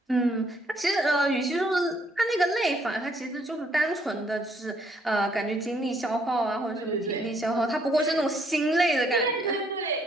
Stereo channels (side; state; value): both; normal; correlation 0.68